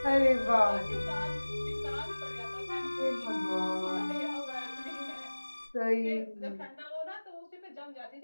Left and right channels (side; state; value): both; inverted; correlation -1.00